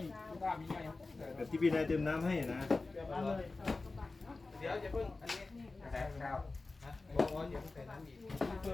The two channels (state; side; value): quieter; right; 3.5 dB